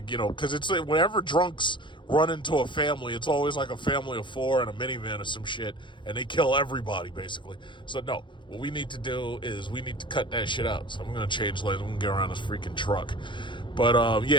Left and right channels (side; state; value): right; late; 0.23 ms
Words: it's like whenever drunks run into a family, it's always like a family of 4 in a minivan or some shit, and they kill everybody, basically. So, no, what we need to do is we need to cut that shit out. So I'm going to change lanes. I'm going to get around this freaking truck. But,